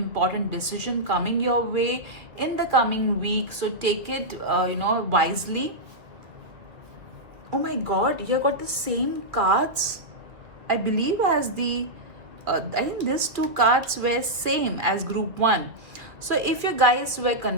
decision coming your way in the coming week, so take it wisely. Oh my god, you got the same cards, I believe, as I think these two cards were same as group 1. So if you guys were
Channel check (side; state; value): left; late; 2.0 ms